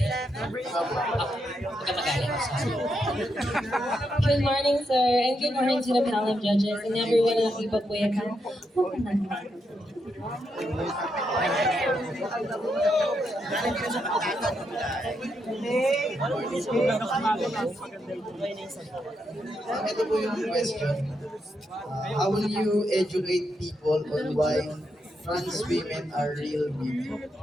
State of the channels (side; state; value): both; normal; correlation 0.82